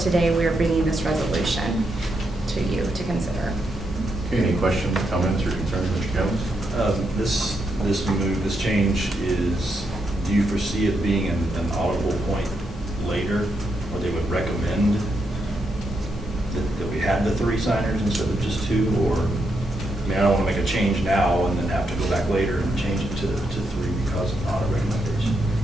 we are bringing this resolution to you to consider. Okay, any questions, comments, or concerns, Mr. Jones? This change is, do you foresee it being an audible point later, where they would recommend that we had the 3 signers instead of just 2, or, I mean, I don't want to make a change now and then have to go back later and change it to 3 because of audit recommendation.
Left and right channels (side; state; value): both; normal; correlation 0.81